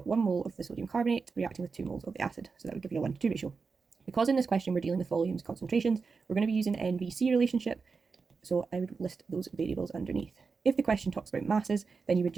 1 mole of the sodium carbonate reacting with 2 moles of the acid, so that would give you a 1:2 ratio. Because in this question we're dealing with volumes, concentrations, we're going to be using NVC relationship, so I would list those variables underneath. If the question talks about masses, then you would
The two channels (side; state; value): left; quieter; 4.9 dB